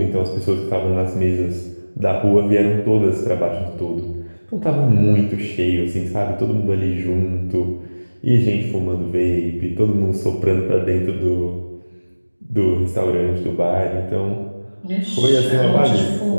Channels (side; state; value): both; inverted; correlation -1.00